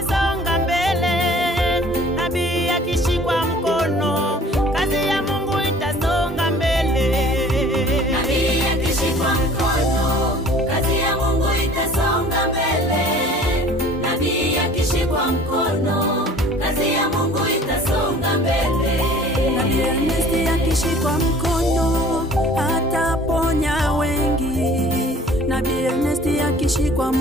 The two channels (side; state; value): both; normal; correlation 0.49